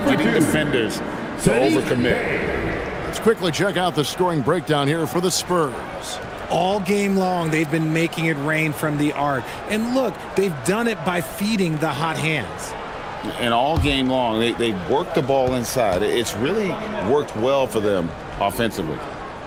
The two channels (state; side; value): identical; both; correlation 1.00